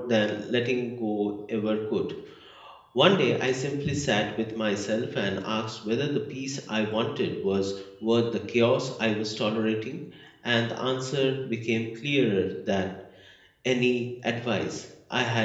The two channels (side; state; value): both; identical; correlation 1.00